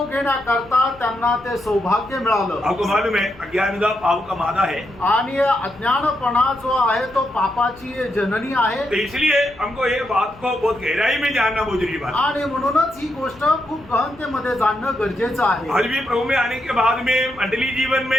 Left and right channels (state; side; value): noise; left; hum, 23 dB below the sound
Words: घेण्याकरता त्यांना ते सौभाग्य मिळालं। आपको मालूम है अज्ञानता पाप का मादा है, आणि अज्ञानपणा जो आहे तो पापाची जननी आहे। तो इसलिए हमको ये बात को बहुत गहराई में जानना बहुत जरूरी बात है। आणि म्हणूनच ही गोष्ट खूप गहनतेमध्ये जाणणं गरजेचं आहे। आज भी प्रभु में आने के बाद में मंडली जीवन